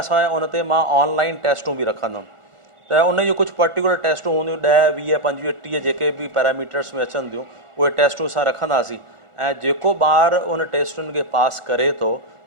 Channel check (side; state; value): left; late; 1.4 ms